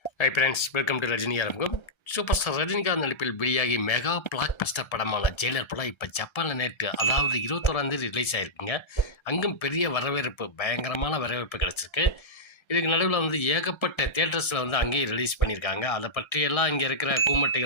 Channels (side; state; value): right; late; 1.3 ms